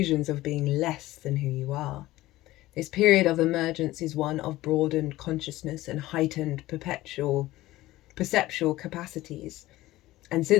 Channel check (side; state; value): right; quieter; 17.0 dB